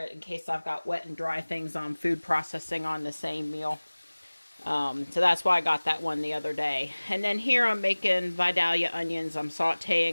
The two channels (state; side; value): inverted; both; correlation -1.00